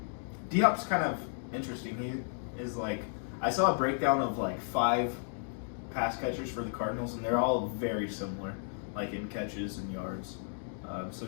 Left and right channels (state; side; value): silent; right; digital silence